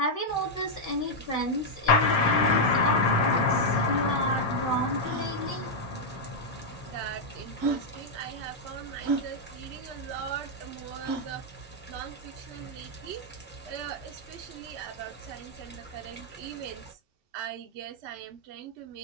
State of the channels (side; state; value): both; normal; correlation -0.02